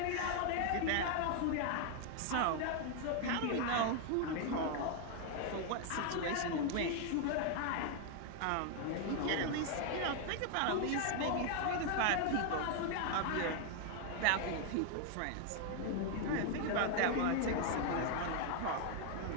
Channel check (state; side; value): different; both; correlation 0.00